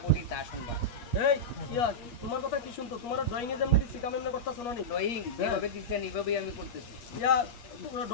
বলি তা শুনবা। এই ইয়া তোমার কথা কি শুনতো? তোমার ড্রয়িং এ যেমনি দিছি কাম এমনি করতেছ না নি? ড্রয়িং যেভাবে দিচ্ছেন এইভাবেই আমি করতেছি। ইয়া তোমার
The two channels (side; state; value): right; late; 8.4 ms